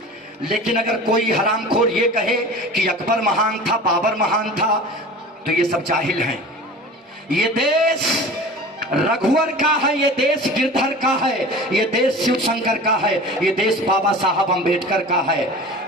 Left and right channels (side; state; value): both; normal; correlation 0.37